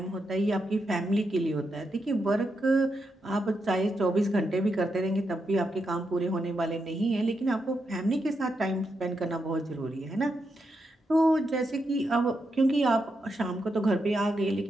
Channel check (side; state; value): both; normal; correlation 0.84